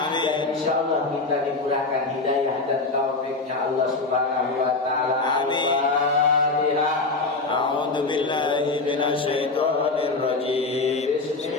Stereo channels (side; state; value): right; quieter; 3.6 dB